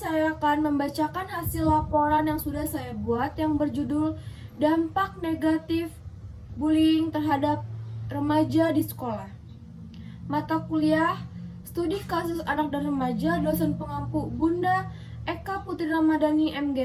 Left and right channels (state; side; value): identical; both; correlation 1.00